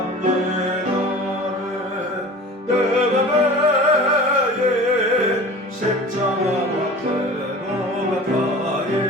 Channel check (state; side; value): normal; both; correlation 0.39